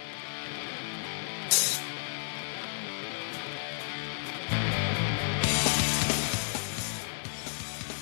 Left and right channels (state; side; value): silent; right; digital silence